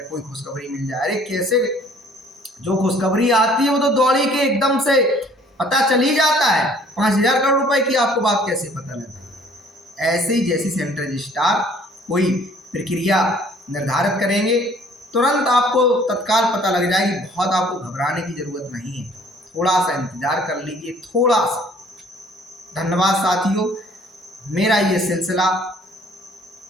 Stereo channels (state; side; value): normal; both; correlation 0.56